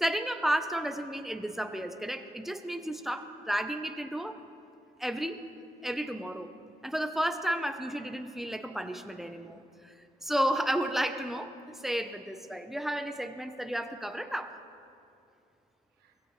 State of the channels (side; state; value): both; normal; correlation 0.90